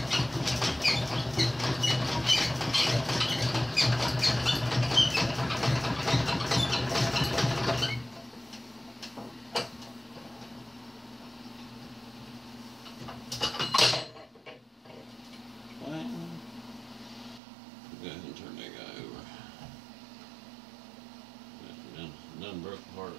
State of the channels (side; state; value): left; drops out; at 17.4 s